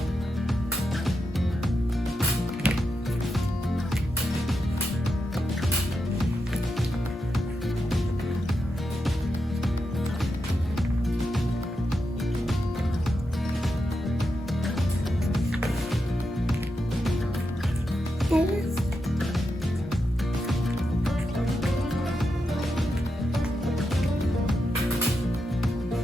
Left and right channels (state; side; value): normal; both; correlation 0.86